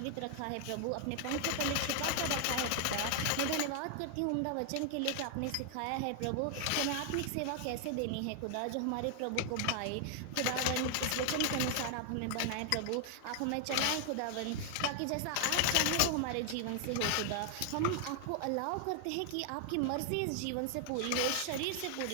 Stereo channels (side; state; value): both; different; correlation 0.00